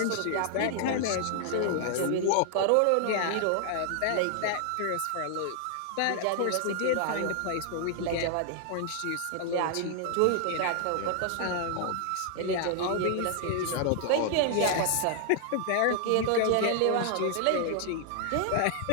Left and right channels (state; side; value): different; both; correlation 0.00